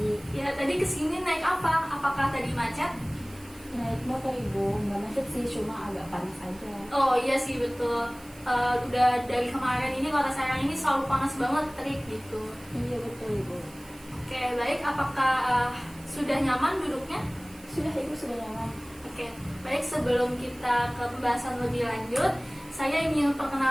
Ya, tadi kesini naik apa? Apakah tadi macet? Naik motor Ibu, nggak macet sih, cuma agak panas aja. Oh iya sih betul. Udah dari kemarin ini Kota Serang ini selalu panas banget, terik gitu. Iya betul Ibu. Oke, baik. Apakah sudah nyaman duduknya? Sudah Ibu, sudah nyaman. Oke, baik. Sebelum kita ke pembahasan lebih lanjut, saya ingin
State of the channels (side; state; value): right; noise; hiss, 22 dB below the sound